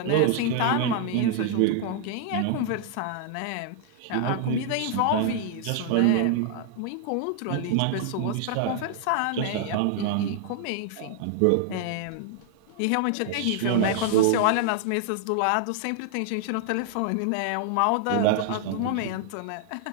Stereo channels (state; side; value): different; both; correlation 0.00